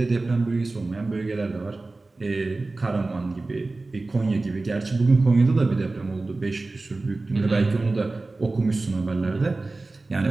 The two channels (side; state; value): left; quieter; 3.3 dB